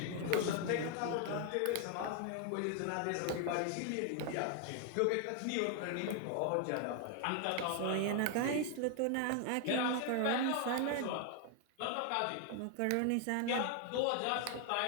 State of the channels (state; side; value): different; both; correlation 0.00